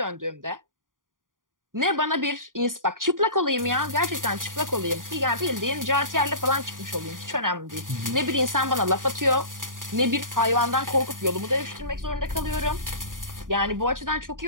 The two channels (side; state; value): left; late; 0.89 ms